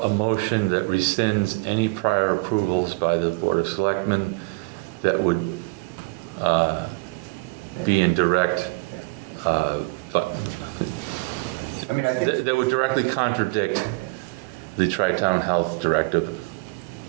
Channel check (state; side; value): quieter; left; 27.2 dB